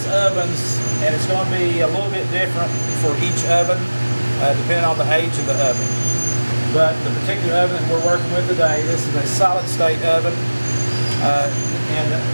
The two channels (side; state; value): both; inverted; correlation -1.00